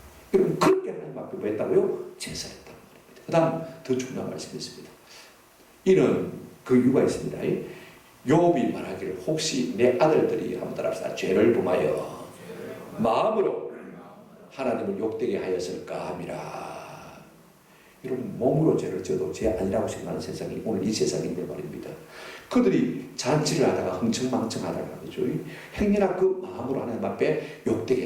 여러분 그렇게 하나님 앞에 뭐 했다고요? 제사했단 말입니다. 그 다음 더 중요한 말씀이 있습니다. 이는 그 이유가 있습니다. 욥이 말하기를 혹시 내 아들들이 한번 따라합시다. 죄를 범하여 마음으로 하나님을 욕되게 하였을까 함이라. 여러분 몸으로 죄를 져도 죄 아니라고 생각하는 세상이 오늘 이 세상인데 말입니다. 그들이 잔치를 하다가 흥청망청하다가 그죠? 행여나 그 마음으로 하나님 앞에 욕되게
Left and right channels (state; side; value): identical; both; correlation 1.00